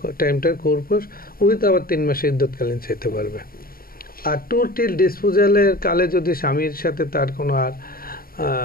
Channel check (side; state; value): right; late; 0.43 ms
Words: টাইমটার খোরপোশ উইথ আবার 3 মাসে ইদ্যৎকালীন চাইতে পারবে। আর টোটাল ডিসপোজালের কালে যদি স্বামীর সাথে তার কোনো আর